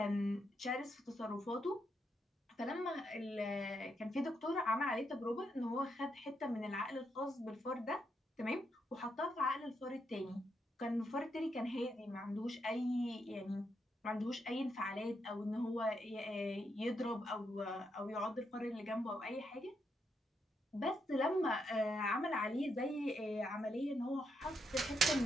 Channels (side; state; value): both; normal; correlation 0.80